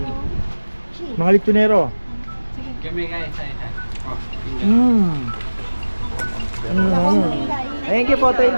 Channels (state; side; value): inverted; both; correlation -1.00